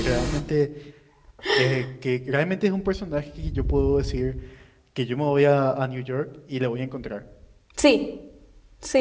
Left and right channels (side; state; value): both; identical; correlation 1.00